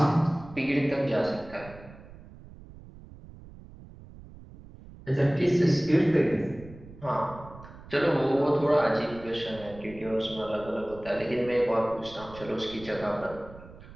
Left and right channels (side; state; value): right; noise; rumble, 18 dB below the sound